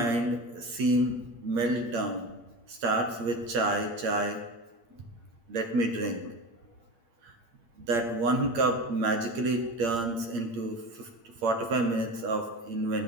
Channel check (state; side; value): late; left; 8.7 ms